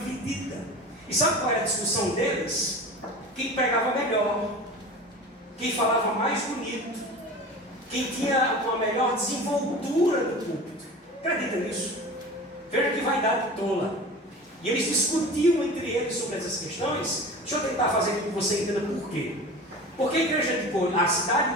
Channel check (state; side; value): normal; both; correlation 0.35